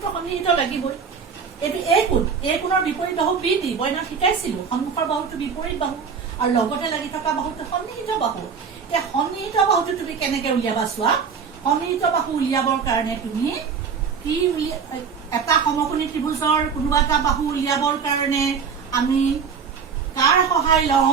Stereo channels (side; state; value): left; quieter; 6.2 dB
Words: সন্নিহিত লাগিবই এইটো এই কোণৰ বিপৰীত বাহু BD বইনা শিকাইছিলো সন্মুখৰ বাহুটো বিপৰীত বাহু আৰু লগতে লাগি থকা বাহুটো সন্নিহিত বাহু এতিয়া সন্নিহিত বাহুটো তুমি কেনেকে উলিয়াবা চোৱা সন্নিহিত বাহু উলিয়াবৰ কাৰণে তুমি কি এটা সমকোণী ত্ৰিভুজৰ কোনোবা এটা বাহু উলিয়াবৰ কাৰণে আমি কাৰ সহায়